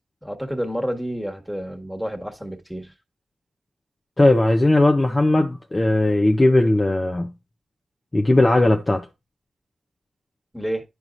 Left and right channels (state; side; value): normal; both; correlation 0.98